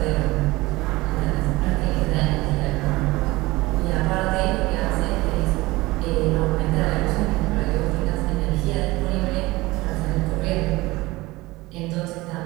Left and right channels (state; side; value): quieter; left; 20.4 dB